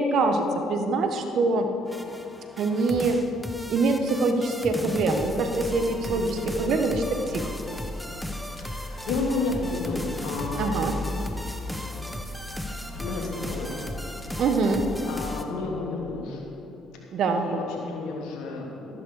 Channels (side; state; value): both; normal; correlation 0.66